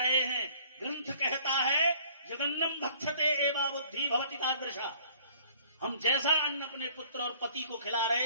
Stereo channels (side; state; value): both; inverted; correlation -0.53